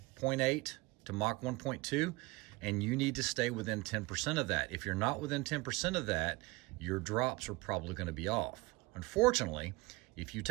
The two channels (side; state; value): left; quieter; 22.6 dB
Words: 0.8 to Mach 1.2. And you need to stay within 10% of that. If you're not within 10% of that, your drops are probably going to be off. Unfortunately, if you